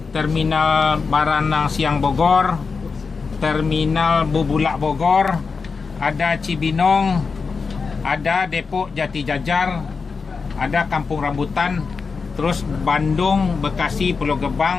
Terminal Baranang Siang Bogor, Terminal Bubulak Bogor, ada Cibinong, ada Depok Jati Jajar, ada Kampung Rambutan, terus Bandung, Bekasi, Pulau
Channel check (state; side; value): quieter; right; 4.9 dB